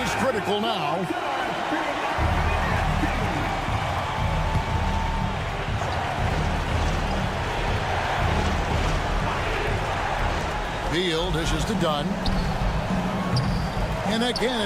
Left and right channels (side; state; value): both; identical; correlation 1.00